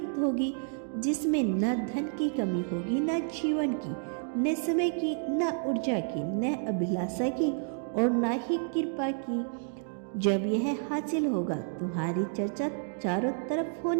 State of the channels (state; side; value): silent; left; digital silence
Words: होगी जिसमें न धन की कमी होगी, न जीवन की, न समय की, न ऊर्जा की, न अभिलाषा की और न ही कृपा की। जब यह हासिल होगा तुम्हारी चर्चा चारों तरफ